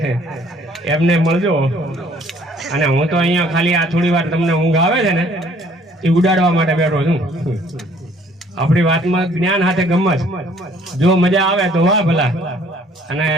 એમને મળજો. અને હું તો અહીંયા ખાલી આ થોડી વાર તમને ઊંઘ આવે છે ને એ ઉડાડવા માટે બેઠો છું. આપણી વાતમાં જ્ઞાન સાથે ગમત, જો મજા આવે તો વાહ ભલા. અને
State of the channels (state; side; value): normal; both; correlation 0.59